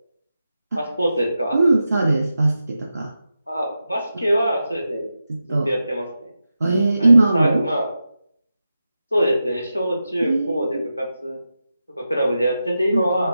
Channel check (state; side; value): inverted; both; correlation -0.90